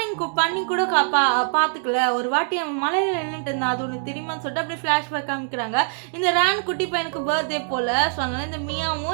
பண்ணி கூட பார்த்துக்கல, ஒரு வாட்டி அவன் மலையில் நின்றுட்டு இருந்தான், அது உனக்கு தெரியுமான்னு சொல்லிட்டு அப்படியே ஃப்ளாஷ்பேக் காமிக்கிறாங்க. இந்த ரேன் குட்டி பையனுக்கு பர்த்டே போல். ஸோ அதனால இந்த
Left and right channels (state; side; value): silent; left; digital silence